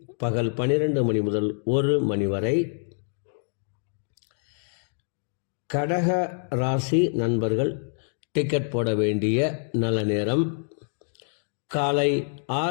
பகல் 12 மணி முதல் 1 மணி வரை. கடக ராசி நண்பர்கள் டிக்கெட் போட வேண்டிய நல்ல நேரம் காலை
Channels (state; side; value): silent; right; digital silence